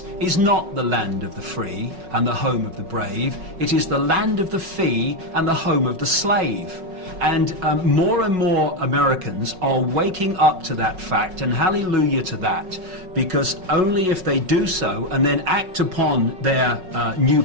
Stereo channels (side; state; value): left; late; 5.4 ms